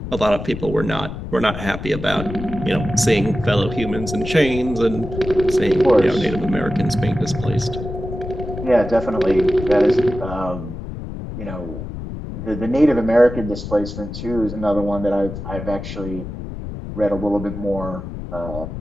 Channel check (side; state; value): left; noise; rumble, 8 dB below the sound